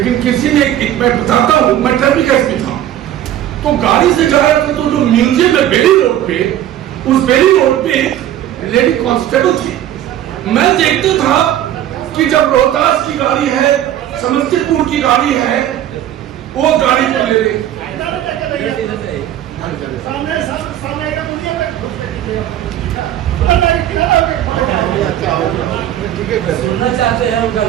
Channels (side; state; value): left; quieter; 11.9 dB